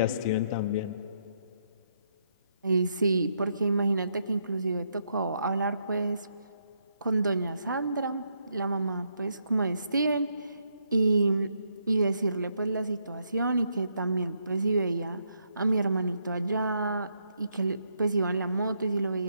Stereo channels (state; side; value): inverted; both; correlation -0.77